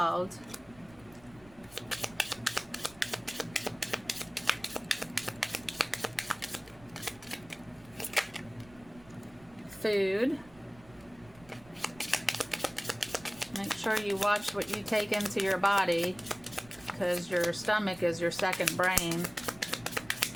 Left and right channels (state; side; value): noise; right; rumble, 24 dB below the sound